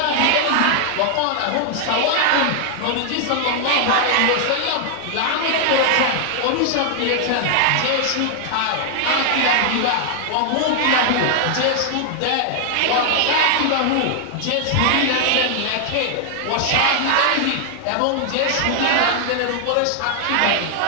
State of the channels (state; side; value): different; both; correlation 0.00